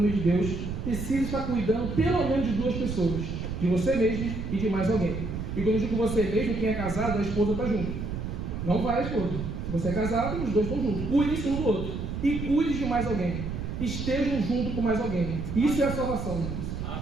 de Deus, precisa estar cuidando pelo menos de duas pessoas, de você mesmo e de mais alguém. E quando eu digo você mesmo, quem é casado, a esposa está junto. Não vai a esposa. Se você é casado, os dois estão juntos. Cuide-se um do outro. E cuide de mais alguém. Estejam junto com mais alguém. Isso é a salvação, irmãos.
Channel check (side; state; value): right; noise; rumble, 5 dB below the sound